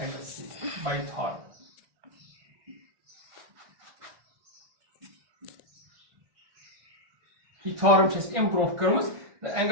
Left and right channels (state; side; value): late; left; 1.5 ms